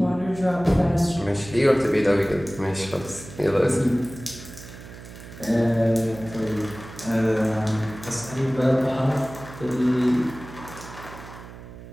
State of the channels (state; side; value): noise; right; hum, 15 dB below the sound